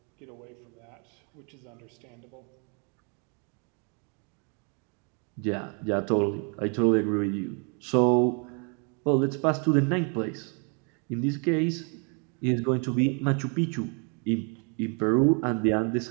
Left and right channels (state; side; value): quieter; left; 37.4 dB